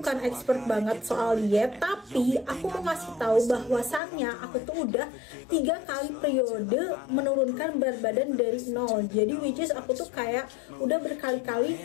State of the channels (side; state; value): right; drops out; at 4.0 s